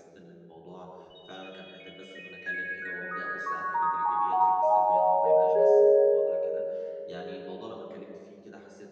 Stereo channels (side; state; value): both; identical; correlation 1.00